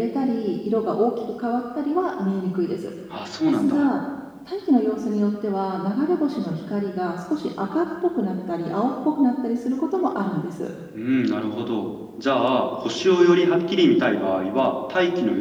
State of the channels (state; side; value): identical; both; correlation 1.00